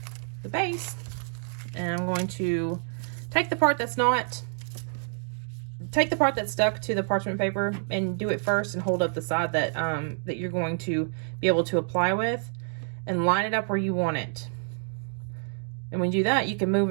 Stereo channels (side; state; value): left; silent; 59 dB below the other